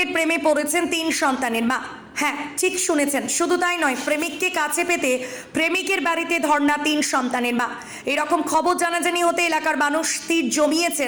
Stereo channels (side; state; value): both; identical; correlation 1.00